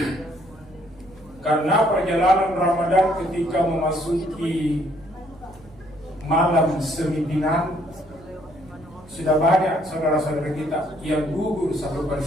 Karena perjalanan Ramadan ketika memasuki malam sembilan, sudah banyak saudara-saudara kita yang gugur satu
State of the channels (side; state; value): right; noise; hum, 25 dB below the sound